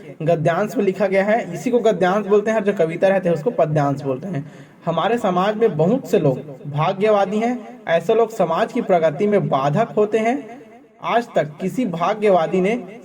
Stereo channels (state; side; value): identical; both; correlation 1.00